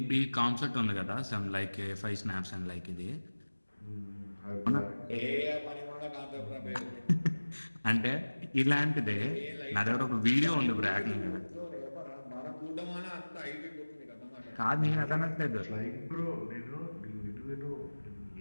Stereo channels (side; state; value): both; inverted; correlation -1.00